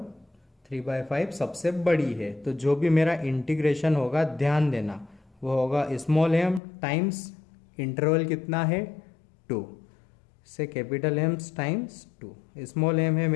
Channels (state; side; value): drops out; right; at 6.6 s